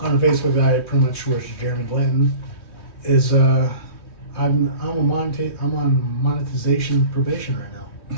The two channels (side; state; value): right; late; 3.2 ms